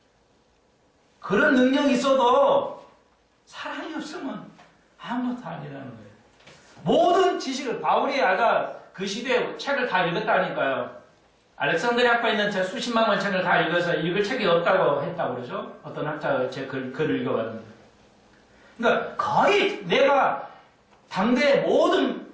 그런 능력이 있어도 사랑이 없으면 아무것도 아니라는 거예요. 모든 지식을 바울이 아까 그 시대에 책을 다 읽었다니까요. 알렉산드리아 학파에 있는 제 수십만 권 책을 다 읽어서 읽을 책이 없다고 했다고 그러죠. 어떤 학자가 제 글을 읽어봤는데. 그러니까 거의 내가 당대의 모든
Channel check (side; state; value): both; identical; correlation 1.00